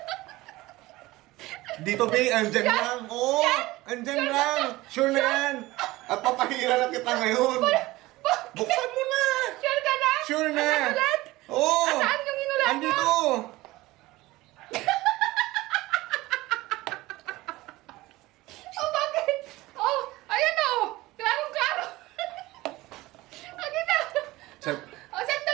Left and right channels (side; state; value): left; quieter; 19.1 dB